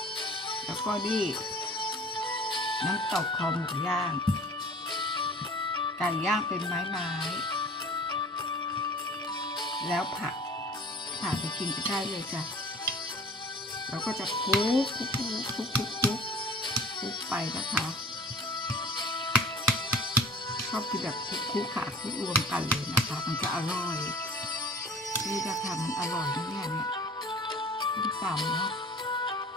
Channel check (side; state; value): both; normal; correlation 0.44